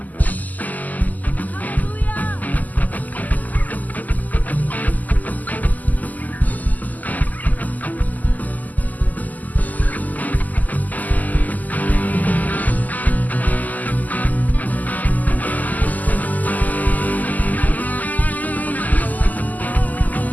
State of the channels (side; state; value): right; late; 0.080 ms